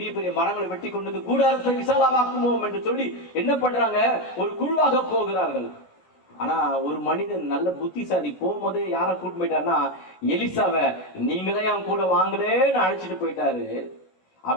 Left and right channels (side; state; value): right; late; 16 ms